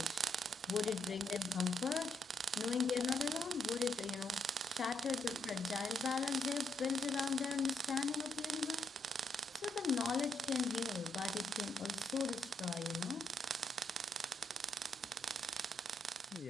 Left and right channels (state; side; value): normal; both; correlation 0.75